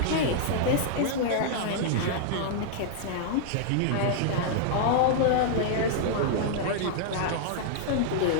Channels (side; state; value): both; different; correlation -0.01